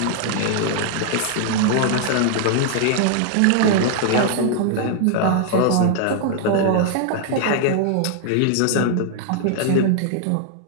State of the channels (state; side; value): different; both; correlation 0.00